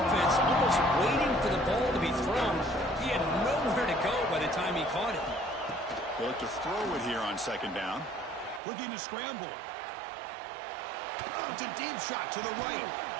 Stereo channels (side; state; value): left; drops out; at 8.6 s